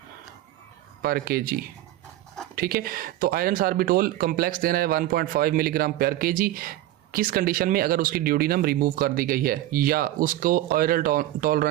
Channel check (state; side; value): quieter; left; 14.6 dB